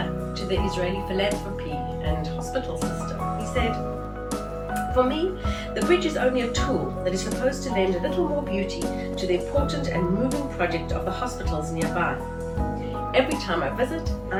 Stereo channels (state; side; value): identical; both; correlation 1.00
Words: to the Israeli philanthropy and hospital system. He said, "For me, the bridge is only a tool that is supposed to lend a little more beauty to the important and moving project of the hospitals nearby. Every time I visit,